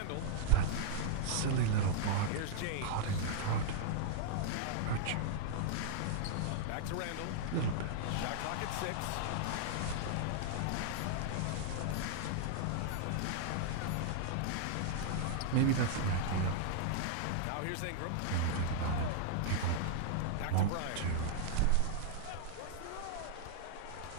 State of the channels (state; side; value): different; both; correlation -0.01